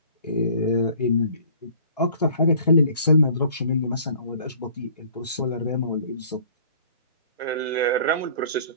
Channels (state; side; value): inverted; both; correlation -0.52